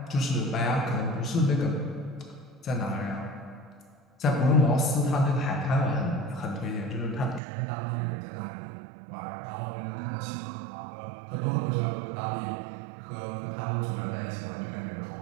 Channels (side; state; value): left; drops out; at 7.4 s